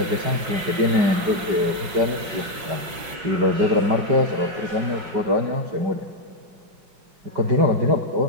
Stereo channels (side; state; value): left; late; 5.7 ms